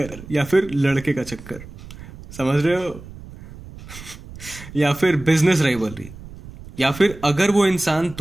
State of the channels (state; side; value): noise; right; rumble, 16 dB below the sound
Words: या फिर लड़के का चक्कर, समझ रहे हो, या फिर बिजनेस राइवलरी, या फिर अगर वो इंसान